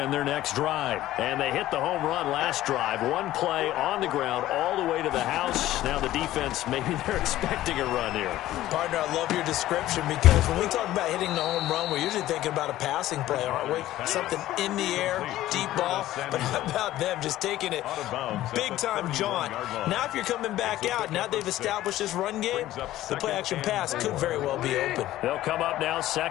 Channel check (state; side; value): quieter; right; 14.6 dB